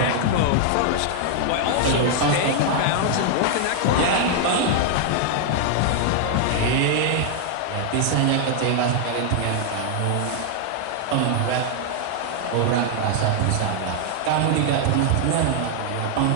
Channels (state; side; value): different; both; correlation 0.00